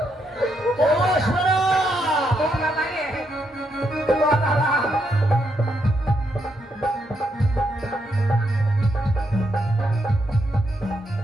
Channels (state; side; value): normal; both; correlation 0.79